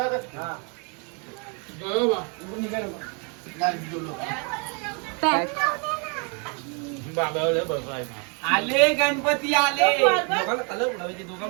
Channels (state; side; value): quieter; left; 36.1 dB